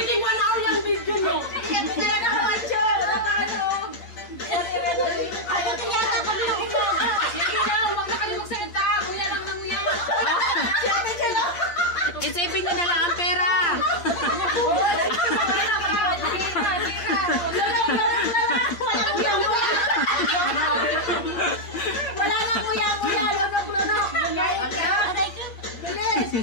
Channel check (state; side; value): late; right; 8.6 ms